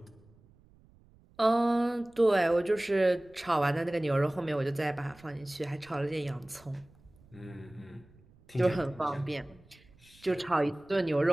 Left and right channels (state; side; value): noise; right; rumble, 28 dB below the sound